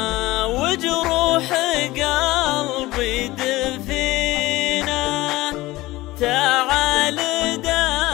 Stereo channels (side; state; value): right; quieter; 18.7 dB